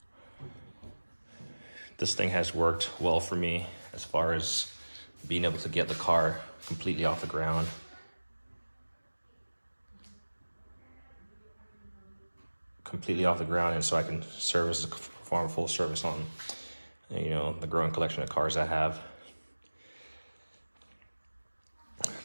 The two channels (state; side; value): inverted; both; correlation -1.00